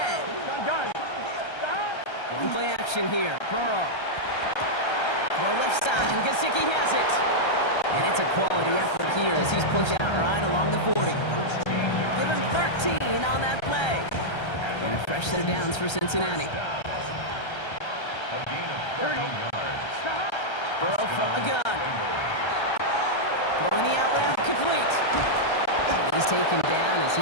Going play action here. Burrow. Throw left side, and Gesicki has it. And it's a quality effort here as he's pushed out right along the 40. Give him 13 on that play. And a fresh set of downs for Cincinnati. Burrow from the gun. Throwing the out route complete. complete. He's taken down as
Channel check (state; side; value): late; right; 1.3 ms